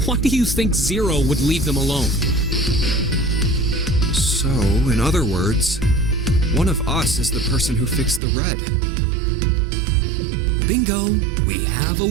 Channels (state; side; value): drops out; left; at 8.2 s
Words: Why do you think Zero would leave them alone? So, in other words, one of us is the person who fixed the red. Bingo! We have a